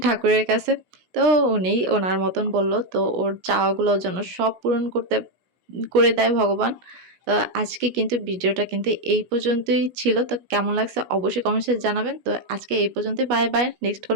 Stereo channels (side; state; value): left; late; 17 ms